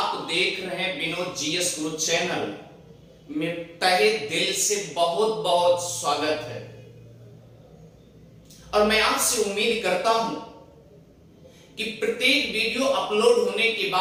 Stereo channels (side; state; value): both; identical; correlation 1.00